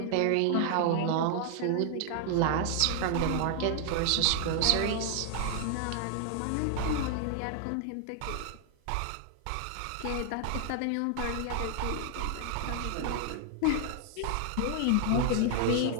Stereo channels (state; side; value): different; both; correlation 0.00